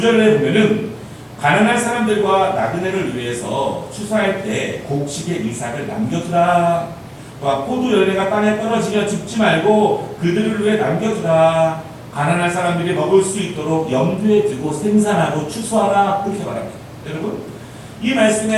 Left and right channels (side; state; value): both; identical; correlation 1.00